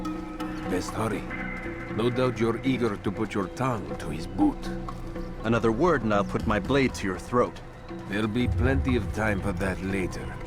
Best hurry. No doubt you're eager to put your tongue to his boot. Another word and I'll put my blade to your throat. There'll be plenty of time for that later,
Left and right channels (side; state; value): both; identical; correlation 1.00